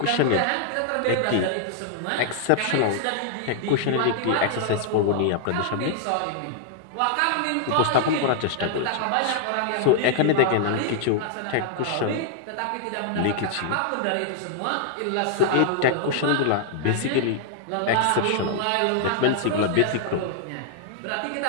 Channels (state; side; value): different; both; correlation -0.01